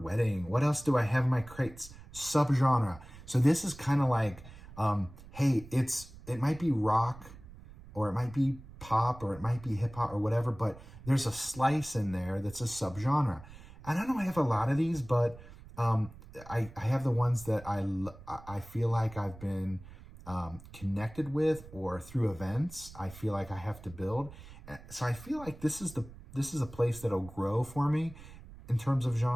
What else do I have in my crates? Subgenre. So this is kind of like, hey, it might be rock, or it might be pop, or it might be hip hop, or whatever, but there's a slice in there that's a subgenre. And I don't have a lot of these, but I have the ones that I feel like I've been connected with, or through events I feel like I have to build. So I feel like this is a place that'll grow for me in terms of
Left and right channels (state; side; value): noise; right; rumble, 18 dB below the sound